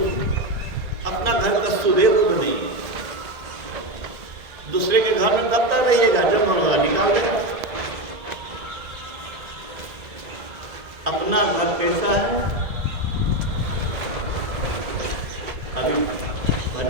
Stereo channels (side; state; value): left; late; 1.9 ms